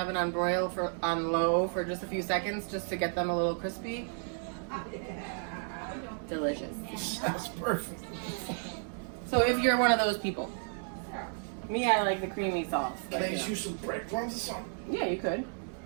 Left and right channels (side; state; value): left; silent; 56 dB below the other